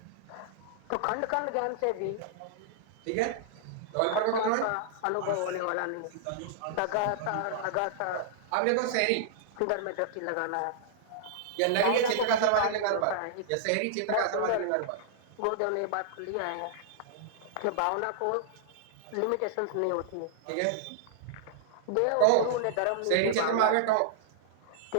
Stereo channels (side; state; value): both; different; correlation -0.01